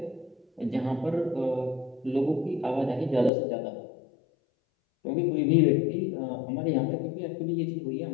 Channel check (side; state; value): right; drops out; at 3.3 s